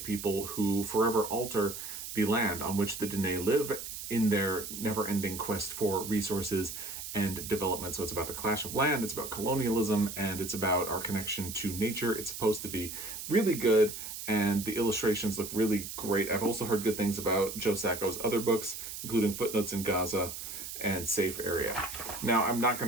people who forever alter the land on which the Diné live in their never-ending quest for resources and development. So it's about the clash of land, it's about colonialism, and it's about our connection to nature. It's supposed to be really good, and the illustrations look really great. I've also heard good things about Joe Sacco's other books, including Footnotes in Gaza and Safe Area. Now, I'm not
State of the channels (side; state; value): right; noise; hiss, 8 dB below the sound